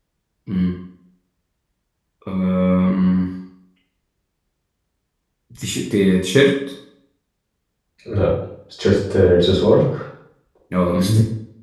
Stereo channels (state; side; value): identical; both; correlation 1.00